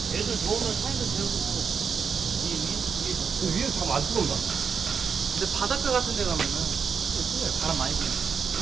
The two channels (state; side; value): quieter; left; 6.3 dB